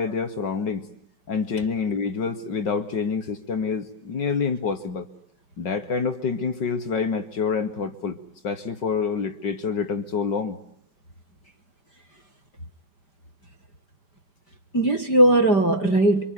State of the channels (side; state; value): right; late; 5.4 ms